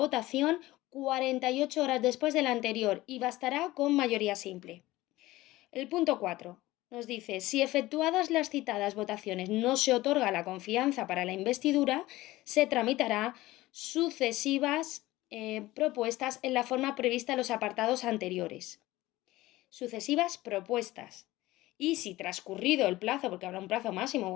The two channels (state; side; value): quieter; right; 17.8 dB